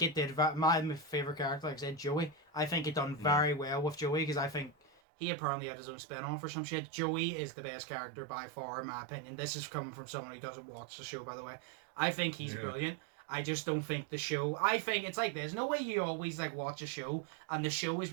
it did. My favorite character, like I said, Joey. I think it done very well with Joey because I think. He apparently had his own spin-off or some shit. Joey is the best character by far, in my opinion. This is coming from someone who doesn't watch the show, by the way. I think he's brilliant. I just don't think the show... I think it's like this. No way you always like watch a show and the show is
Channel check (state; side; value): drops out; left; at 5.0 s